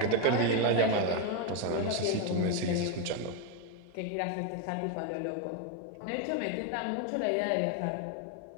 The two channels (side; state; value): both; different; correlation 0.01